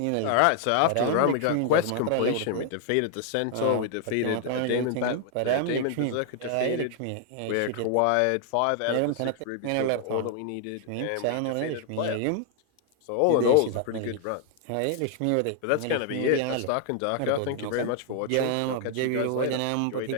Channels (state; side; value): different; both; correlation 0.00